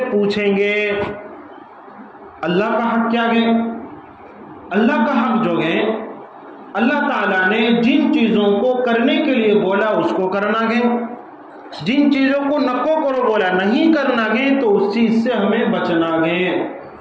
پوچھیں گے۔ اللہ کا حق کیا ہے؟ اللہ کا حق جو ہے، اللہ تعالیٰ نے جن چیزوں کو کرنے کے لیے بولا اس کو کرنا ہے، جن چیزوں کو نکو کرو بولا نہیں کرنا ہے تو اس چیز سے ہمیں بچنا ہے۔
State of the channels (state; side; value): identical; both; correlation 1.00